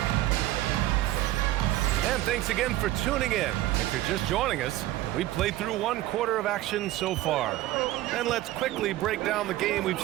And thanks again for tuning in. If you're just joining us, we played through 1 quarter of action so far. And let's quickly break down the game we've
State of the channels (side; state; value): left; quieter; 15.5 dB